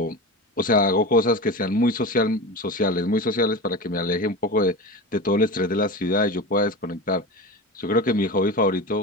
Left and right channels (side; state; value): both; normal; correlation 0.27